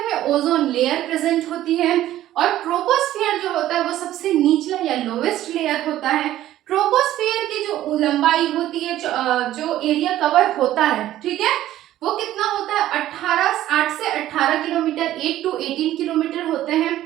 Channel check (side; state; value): left; quieter; 13.6 dB